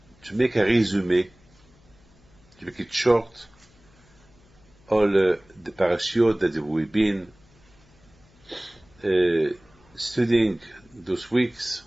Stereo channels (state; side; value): noise; left; hum, 29 dB below the sound